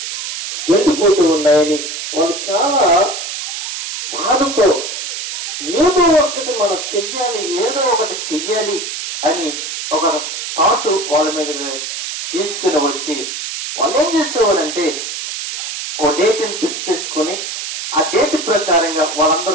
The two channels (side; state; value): right; noise; hiss, 5 dB below the sound